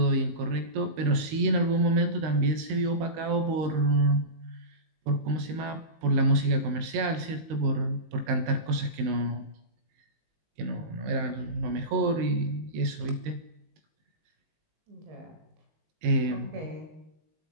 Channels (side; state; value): left; late; 19 ms